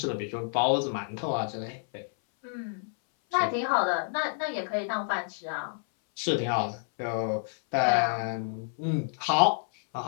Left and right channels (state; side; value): silent; right; 59 dB below the other